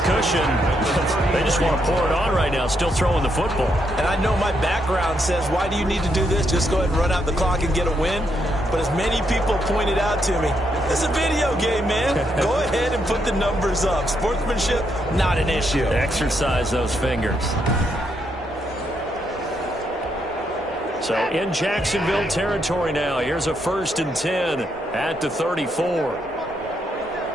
cushion. They just want to pour it on right now, still throwing the football. And I know my background says, why do you need to do this? Just go ahead and run out the clock and get a win. But as many people pointed out to me, this is a video game, man. Go ahead and put the numbers up. Sportsmanship, not an issue. Exercise those fingers. So in Jacksonville territory now. Here's a 1st and 10 at the 34.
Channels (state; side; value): normal; both; correlation 0.78